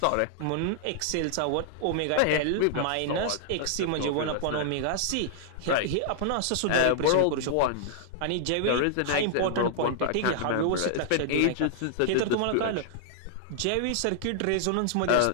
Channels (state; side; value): different; both; correlation -0.01